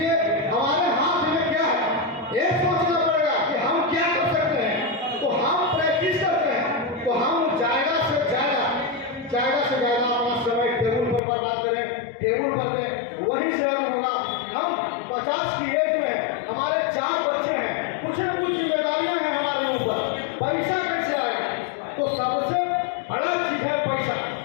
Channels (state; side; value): drops out; right; at 11.2 s